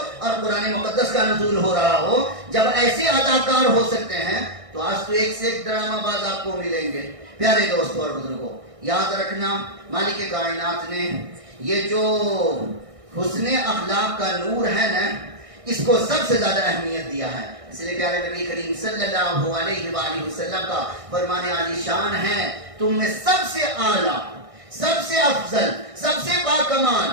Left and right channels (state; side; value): late; left; 1.6 ms